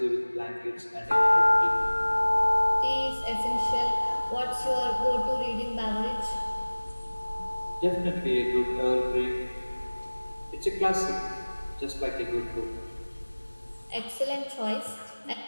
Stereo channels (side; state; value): both; inverted; correlation -1.00